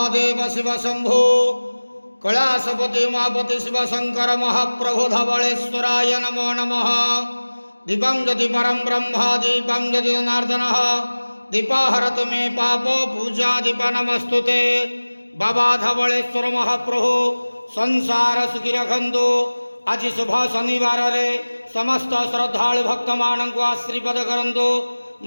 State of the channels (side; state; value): both; inverted; correlation -1.00